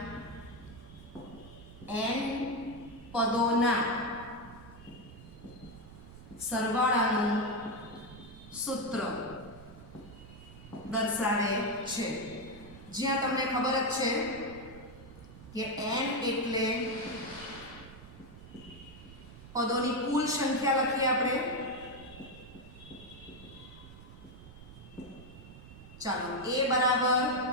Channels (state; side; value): noise; right; rumble, 16 dB below the sound